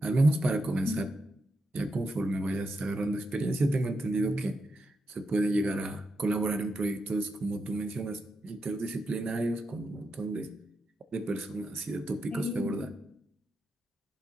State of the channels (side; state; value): both; normal; correlation 0.85